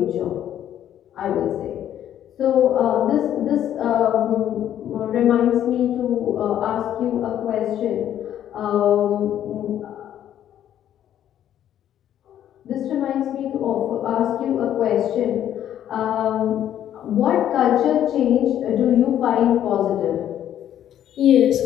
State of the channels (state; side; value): quieter; right; 10.9 dB